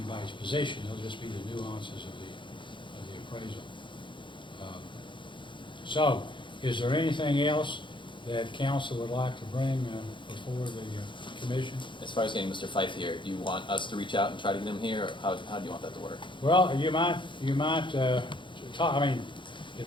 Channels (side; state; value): right; late; 0.23 ms